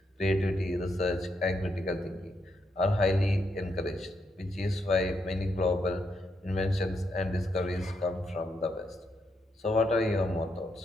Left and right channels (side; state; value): both; normal; correlation 0.80